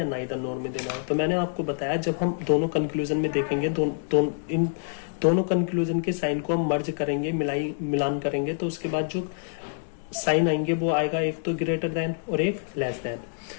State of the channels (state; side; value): silent; right; digital silence